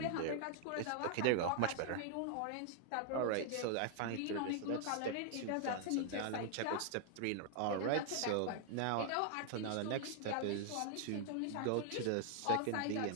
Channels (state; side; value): different; both; correlation 0.00